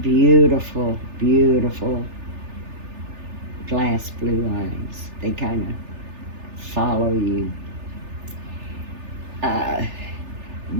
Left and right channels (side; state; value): left; late; 3.4 ms